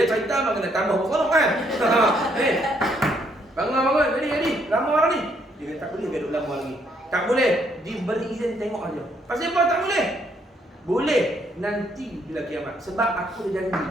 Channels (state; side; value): normal; both; correlation 0.71